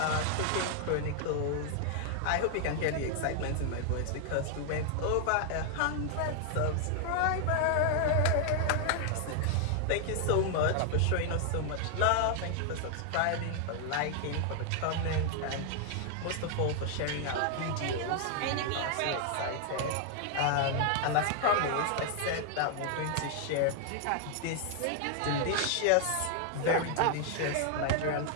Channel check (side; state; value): both; different; correlation 0.00